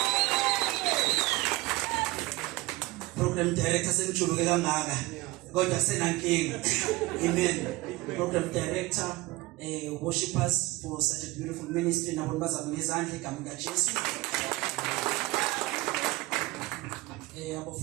Program director sengijuluke kangaka kodwa senankinga. Amen. Program director worshipers for such a beautiful ministry nabo bazama ngezandla igama likaJesu.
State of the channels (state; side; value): quieter; left; 20.4 dB